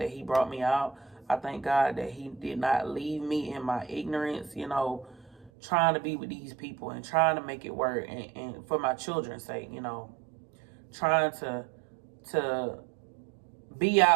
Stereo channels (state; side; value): drops out; left; at 5.5 s